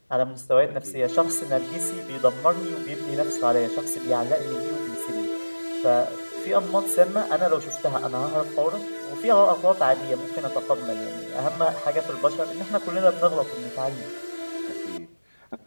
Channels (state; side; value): inverted; both; correlation -1.00